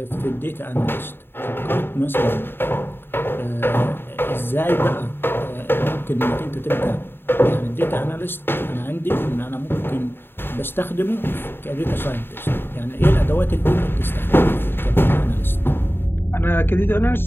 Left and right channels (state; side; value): late; right; 0.10 ms